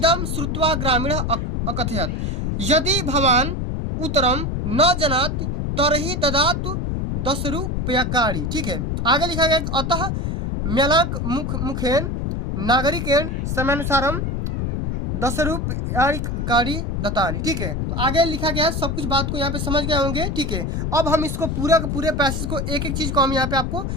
श्रुत्वा ग्रामीण अकथयत् यदि भवान उत्तरम न जानाति तर्हि ददातु 10 रूप्यकाणि। ठीक है, आगे लिखा गया अतः म्यालाक मुखेन नागरिकेन समयानुसारम 10 रूप्यकाणि दत्तानि। ठीक है, तो आगे लिखा गया है, सब कुछ बात को यहाँ पे समझ गए होंगे। ठीक है, अब हम इसको पूरा के पूरे पैसेज को एक एक चीज को हम यहाँ पे आपको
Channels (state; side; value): noise; left; rumble, 1 dB below the sound